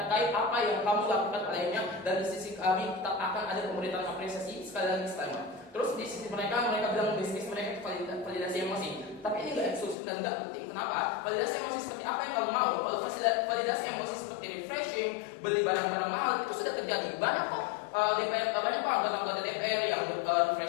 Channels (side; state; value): right; drops out; at 10.0 s